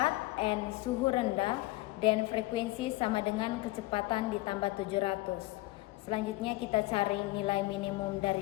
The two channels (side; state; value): right; quieter; 19.7 dB